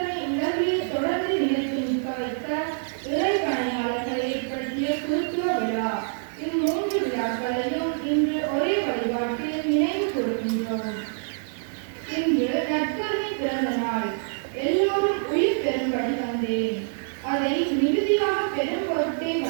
உலகிலே தொடர்ந்து நிலைத்து நிற்க வைக்க இறை பணியாளர்களை ஏற்படுத்திய குருத்துவ விழா. இம்மூன்று விழாக்களையும் இன்று ஒரே வழிபாட்டில் நினைவு கூறுகின்றோம். இன்று நற்கருணை பிறந்த நாள். எல்லோரும் உயிர் பெறும்படி வந்தேன், அதை மிகுதியாக பெரும் பொருட்டே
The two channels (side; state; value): left; silent; digital silence